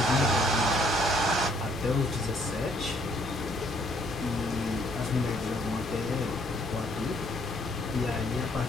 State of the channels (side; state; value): both; normal; correlation 0.65